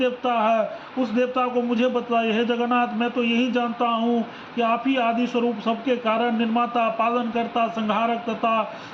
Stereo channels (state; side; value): identical; both; correlation 1.00